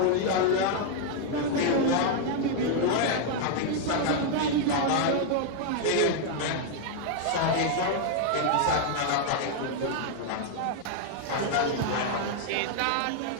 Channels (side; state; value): both; different; correlation 0.00